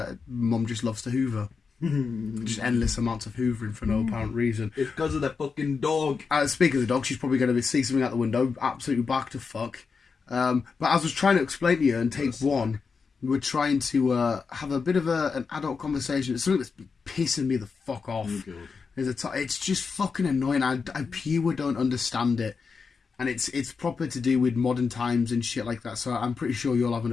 Mum just loves to hoover. Just endless amounts of hoovering for no apparent reason. It's because of the fucking dog. Speaking of the dog, she's probably going to see something out the window, absolutely back to fuck. But as I was trying to explain to you in take one, we were trying to have a bit of an adult conversation. It's something that's pissing me the fuck off. It's just fucking annoying. I pure don't understand it. And it's proper to do with modern times and shit like that. So I'm pretty sure you'll have an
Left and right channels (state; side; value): quieter; right; 5.2 dB